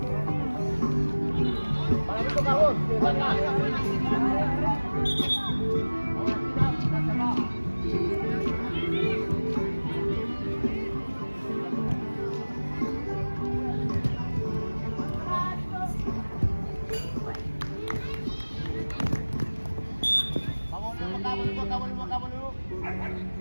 Para mí toca vos, de acá. Volvemos acá.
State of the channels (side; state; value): both; inverted; correlation -1.00